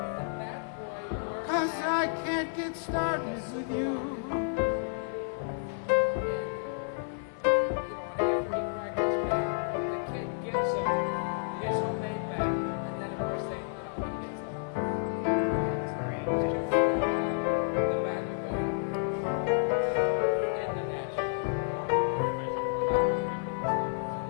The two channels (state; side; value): silent; right; 55 dB below the other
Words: 'Cause I can't get started with you.